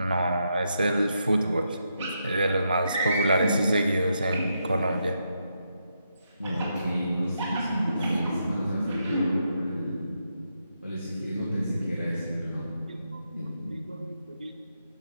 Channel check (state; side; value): inverted; both; correlation -0.82